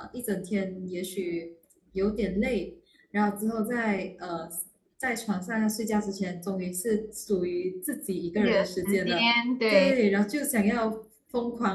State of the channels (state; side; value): identical; both; correlation 1.00